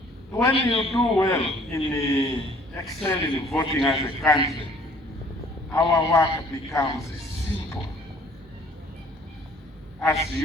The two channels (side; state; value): both; normal; correlation 0.56